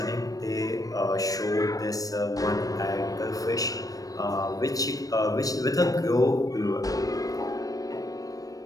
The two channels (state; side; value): late; right; 0.17 ms